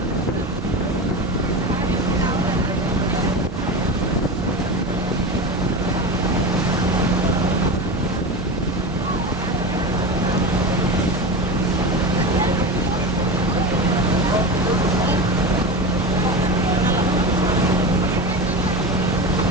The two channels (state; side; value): normal; both; correlation 0.24